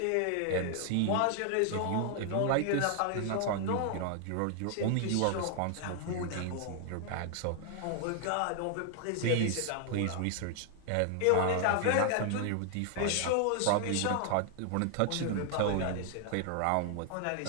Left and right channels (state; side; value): different; both; correlation 0.00